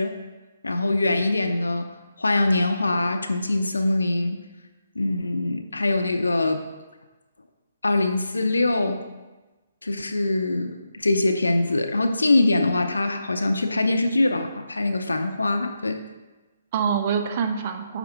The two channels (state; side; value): inverted; both; correlation -0.88